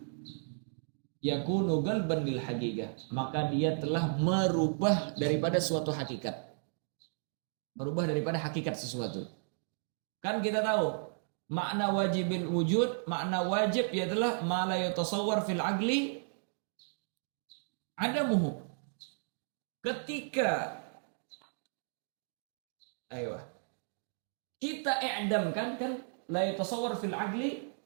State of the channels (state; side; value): silent; left; digital silence